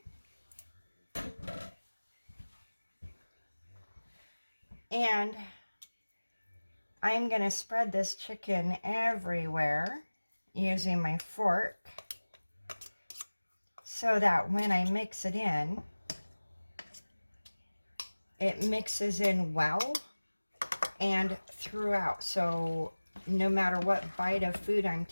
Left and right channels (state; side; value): inverted; both; correlation -1.00